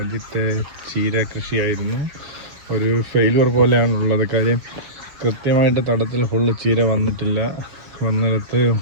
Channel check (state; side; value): late; left; 6.6 ms